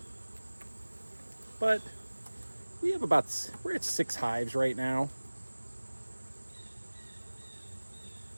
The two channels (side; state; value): both; inverted; correlation -1.00